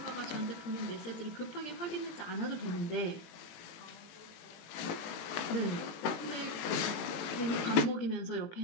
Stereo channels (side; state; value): right; late; 18 ms